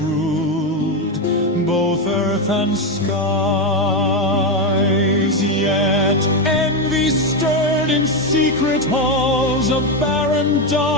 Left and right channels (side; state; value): both; normal; correlation 0.09